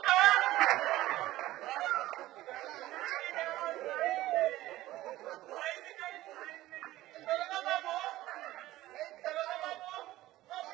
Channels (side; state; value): left; quieter; 16.1 dB